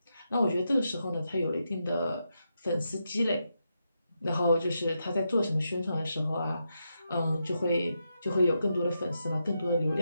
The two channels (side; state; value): both; inverted; correlation -0.84